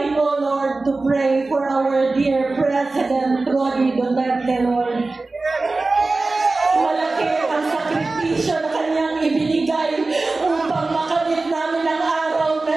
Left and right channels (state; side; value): quieter; left; 3.4 dB